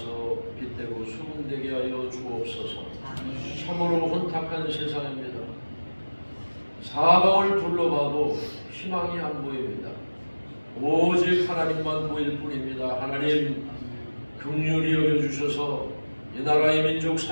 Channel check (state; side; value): inverted; both; correlation -1.00